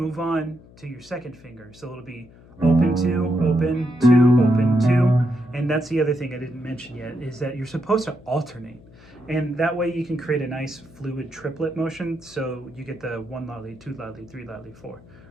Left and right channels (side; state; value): left; noise; hum, 23 dB below the sound